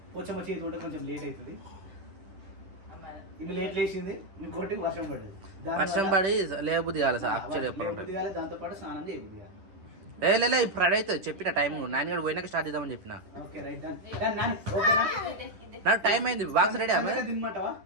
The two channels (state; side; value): late; left; 10 ms